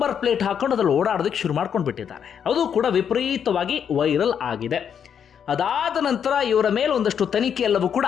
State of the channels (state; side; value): quieter; right; 8.0 dB